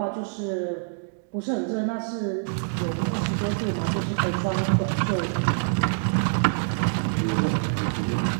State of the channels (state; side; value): silent; left; digital silence